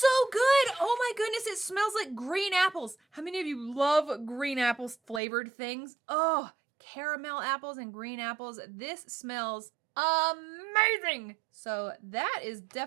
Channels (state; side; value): drops out; left; at 5.2 s